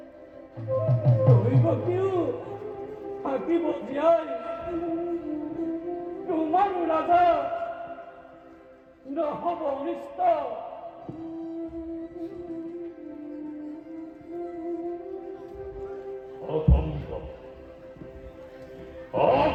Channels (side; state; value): both; identical; correlation 1.00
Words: দৈবকেও থাকিব জীয়াই তোমাৰ ৰাজা নহব অনিষ্ট অসম্ভব